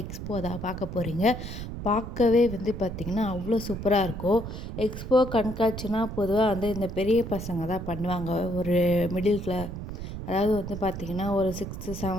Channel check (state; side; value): noise; right; rumble, 8 dB below the sound